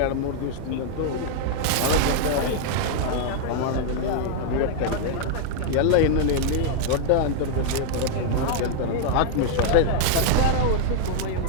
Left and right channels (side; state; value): both; different; correlation 0.00